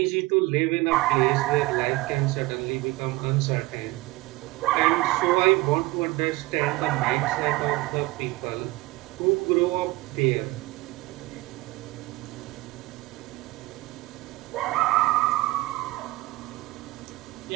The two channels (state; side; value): quieter; left; 20.4 dB